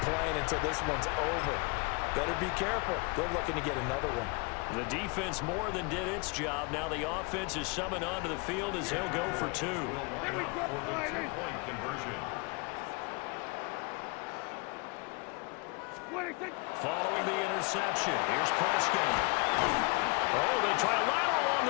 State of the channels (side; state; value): right; quieter; 29.8 dB